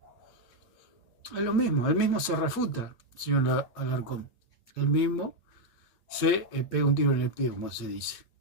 Es lo mismo, él mismo se refuta, señor Alarcón. Él mismo se pega un tiro en el pie, como se dice.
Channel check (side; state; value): right; late; 8.5 ms